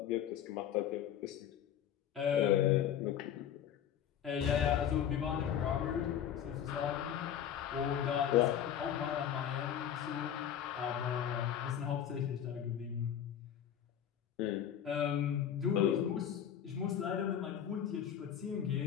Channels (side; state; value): right; quieter; 9.6 dB